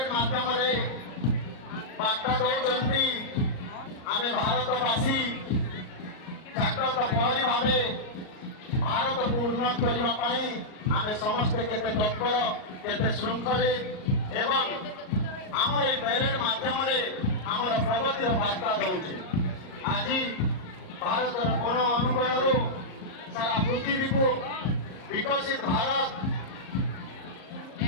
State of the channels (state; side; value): late; right; 38 ms